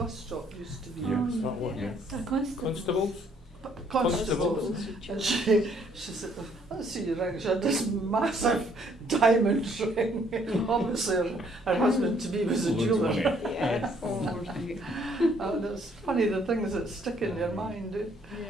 stop used to be. Yeah. Oh, that one, yeah. A constable. Constables? Constables. And she said, let's see your ring. She had this massive diamond ring. Obviously her husband to be was a Loads of jeweller. money. Yes. Oh, right. And it's funny the things that stick in your mind. Yeah.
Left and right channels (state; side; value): normal; both; correlation 0.65